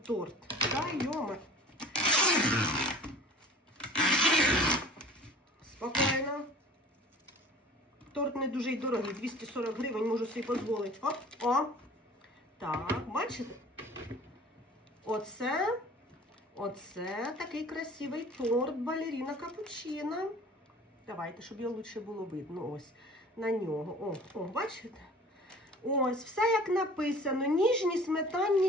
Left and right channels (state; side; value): normal; both; correlation 0.44